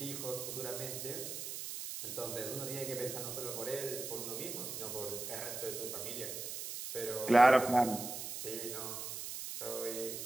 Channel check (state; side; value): noise; right; hiss, 6 dB below the sound